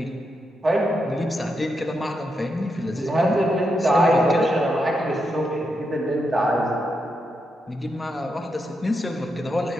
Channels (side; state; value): both; normal; correlation 0.84